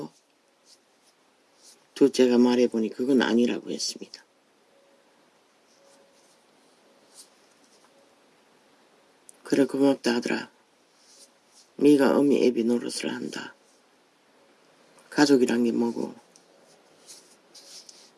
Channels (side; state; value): both; identical; correlation 1.00